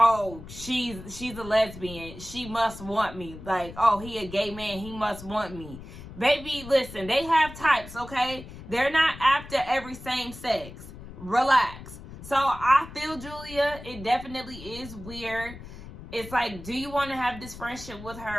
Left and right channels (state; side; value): noise; left; rumble, 14 dB below the sound